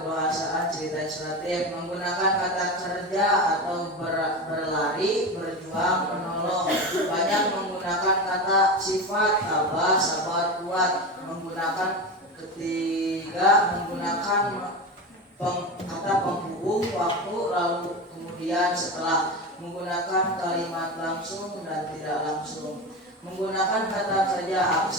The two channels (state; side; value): normal; both; correlation 0.23